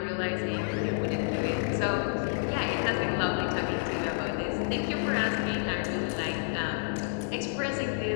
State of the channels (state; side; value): silent; right; digital silence